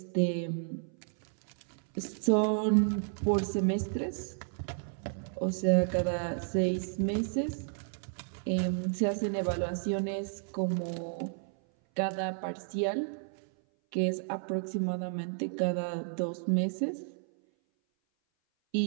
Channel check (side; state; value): left; silent; 56 dB below the other